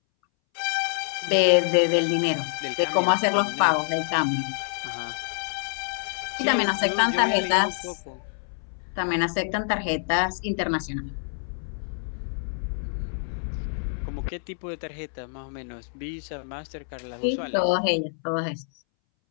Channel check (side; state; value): right; silent; 61 dB below the other